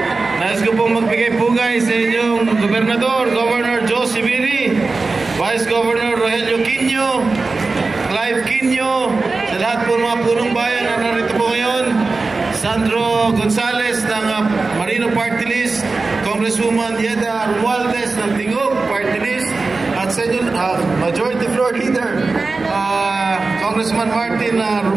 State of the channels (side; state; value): left; quieter; 3.8 dB